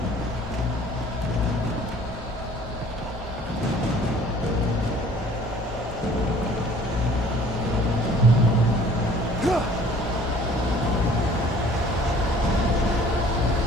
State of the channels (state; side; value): normal; both; correlation 0.52